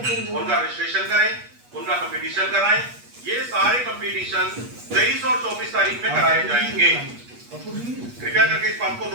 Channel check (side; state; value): left; late; 8.3 ms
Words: उनका रजिस्ट्रेशन करें, उनका कंपटीशन कराएं। ये सारे कंपटीशन 23 और 24 तारीख में कराए जाएंगे। कृपया करके इस बात को